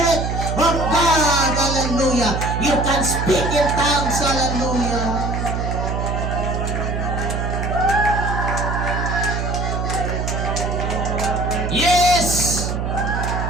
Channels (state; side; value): noise; right; hum, 2 dB below the sound